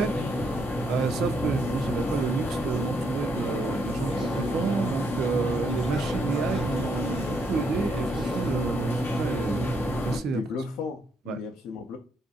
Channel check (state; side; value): normal; both; correlation 0.74